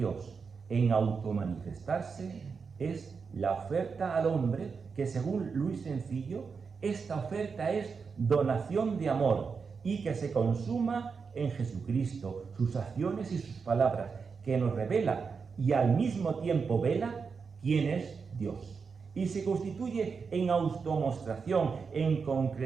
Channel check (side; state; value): left; quieter; 5.4 dB